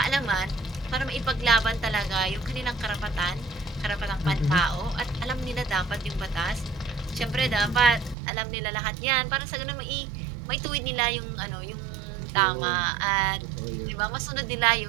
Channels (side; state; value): left; drops out; at 8.2 s